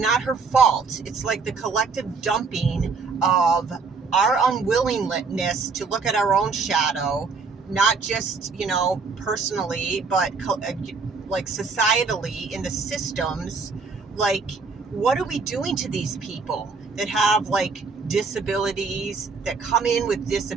her fault. It's like the collective dumping of our unwillingness to look at our own shadow, not just, personally, but like societally in the systems. Like, what are we doing to these people that have like disabilities, that come in with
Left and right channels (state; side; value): quieter; left; 4.6 dB